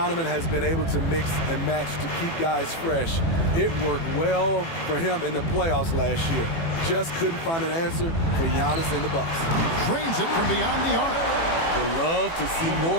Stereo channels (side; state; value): right; late; 18 ms